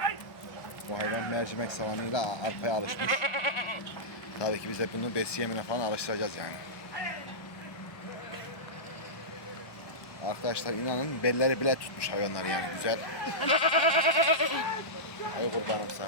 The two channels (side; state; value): right; late; 1.1 ms